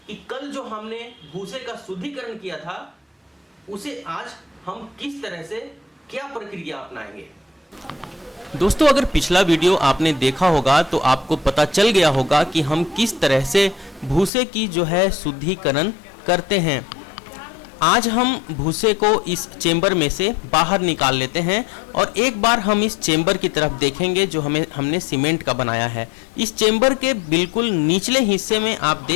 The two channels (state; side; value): drops out; right; at 14.3 s